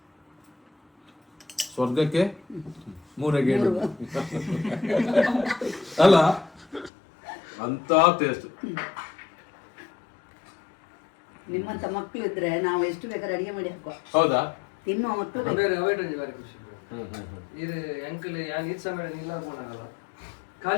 ಸ್ವರ್ಗಕ್ಕೆ 3 ಗೇಣು ಅಲ್ಲ ಅಂತ ಟೇಸ್ಟ್ ನಿಮ್ಮಂತ ಮಕ್ಕಳು ಇದ್ರೆ ನಾವು ಎಷ್ಟು ಬೇಕಾದ್ರೆ ಅಡಿಗೆ ಮಾಡಿ ಹಾಕುವ ಹೌದಾ ತಿನ್ನುವ ಮಕ್ಕಳು ಇದು ಅಂಕಲ್ ಯಾನ್ ಈದ್ ಸಮಯ ಇಲ್ಲ ಅನ್ಕೊಂಡಾಗಲ್ಲ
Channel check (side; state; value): right; drops out; at 6.9 s